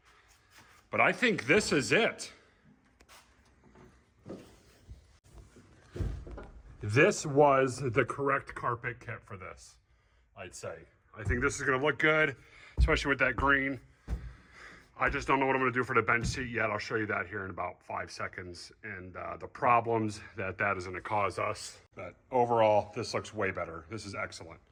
But I think this is it. This was the correct carpet kit for this, I'd say. I think this is gonna look good, especially with that green. I just don't know what I'm gonna do for the bench seat yet. I'll show you that here in about 5 seconds and the problems that is gonna cause us. But overall, this looks way better. This is excellent.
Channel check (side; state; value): both; identical; correlation 1.00